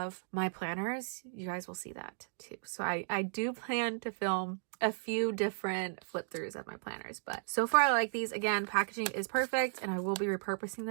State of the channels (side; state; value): left; silent; digital silence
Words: my planners, you guys will see that too. So I I do plan to film a few different flip throughs of my planners, but so far I like these. Again, packaging is perfect, and I will be repurposing